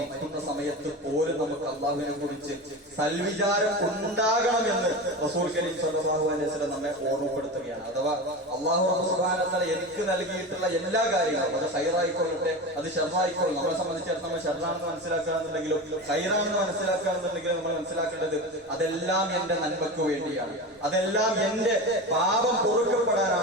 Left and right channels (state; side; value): normal; both; correlation 0.26